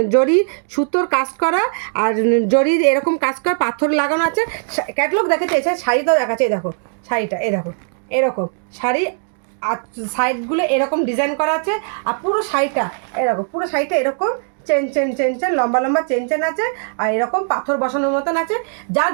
জরি সুতোর কাজ করা, আর জরির এরকম কাজ করা, পাথর লাগানো আছে। ক্যাটালগ দেখাচ্ছে, এছাড়া শাড়িটাও দেখাচ্ছে। দেখো শাড়িটা দেখো এরকম শাড়ি, আর সাইডগুলো এরকম ডিজাইন করা আছে। আর পুরো শাড়িটা এরকম, পুরো শাড়িটা এরকম চেন লম্বা লম্বা চেন আছে, আর এরকম পাথর বসানোর মতন আছে। যার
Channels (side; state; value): left; silent; 57 dB below the other